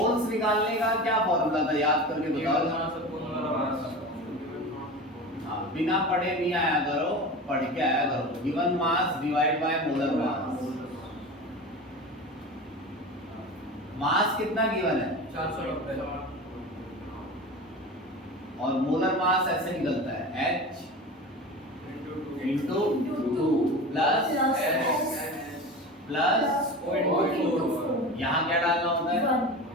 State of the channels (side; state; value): both; normal; correlation 0.31